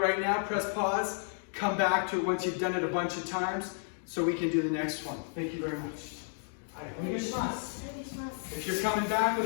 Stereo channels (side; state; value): right; silent; 56 dB below the other